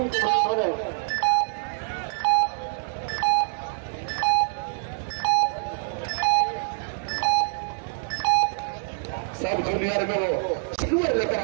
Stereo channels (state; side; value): silent; left; digital silence